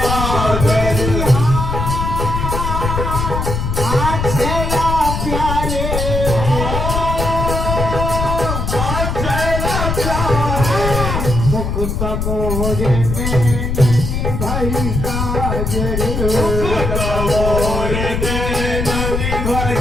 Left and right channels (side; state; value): left; noise; rumble, 2 dB below the sound